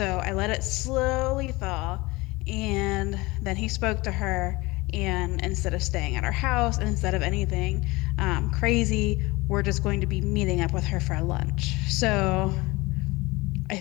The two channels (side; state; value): right; quieter; 22.4 dB